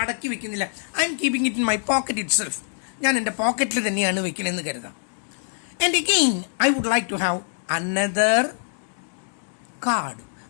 വെക്കുന്നില്ല. I am keeping it in my pocket itself. ഞാൻ എൻ്റെ പോക്കറ്റിൽ തന്നെയാണ് വെക്കണമെന്ന് കരുതാം. And again I would like to have another card,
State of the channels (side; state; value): right; silent; 62 dB below the other